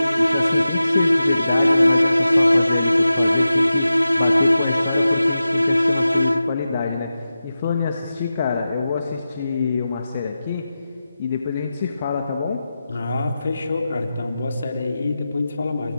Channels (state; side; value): inverted; both; correlation -0.93